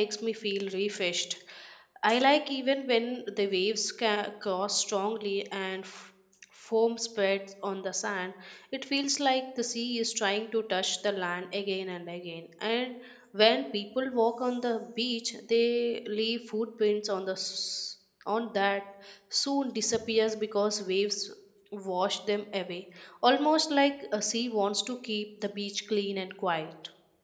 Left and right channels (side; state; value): both; identical; correlation 1.00